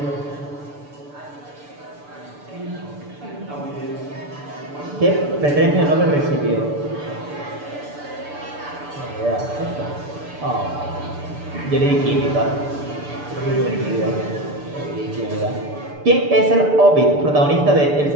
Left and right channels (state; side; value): late; left; 6.8 ms